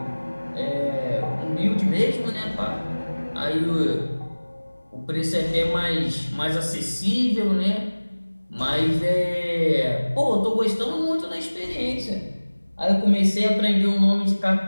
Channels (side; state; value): both; inverted; correlation -1.00